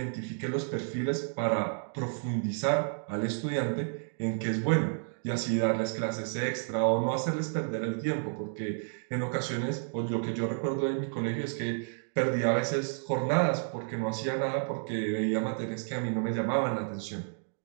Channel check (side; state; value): left; silent; digital silence